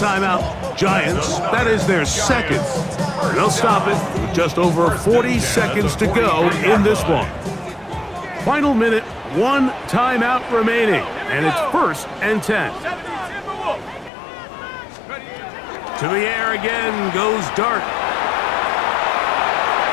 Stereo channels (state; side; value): drops out; right; at 14.1 s